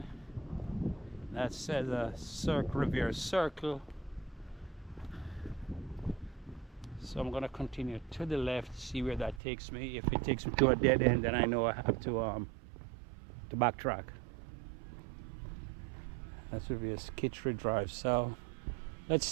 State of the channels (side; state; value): left; drops out; at 9.4 s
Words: that says a Riviera Circle. So I'm gonna continue to the left, see where that takes me. If it takes me to a dead end, then I know I have to backtrack. That's Riviera Skittery Drive. So let's